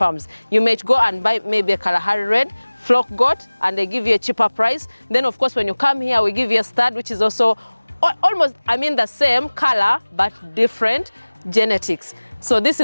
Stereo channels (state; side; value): inverted; both; correlation -1.00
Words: you may go and buy maybe a Kalahari Red flock goat, and they give you a cheaper price. Then of course, when you come here, we give you a stud, which is also almost, the same color, but different genetics. So this